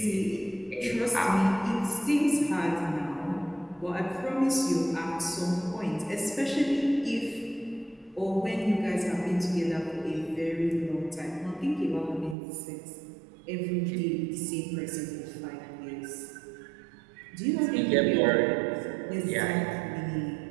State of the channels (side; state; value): left; drops out; at 12.4 s